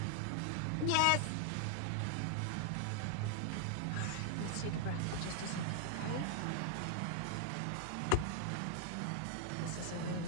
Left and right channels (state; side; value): different; both; correlation -0.01